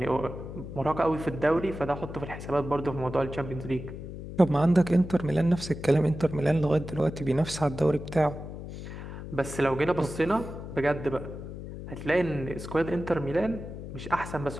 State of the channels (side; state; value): left; noise; hum, 10 dB below the sound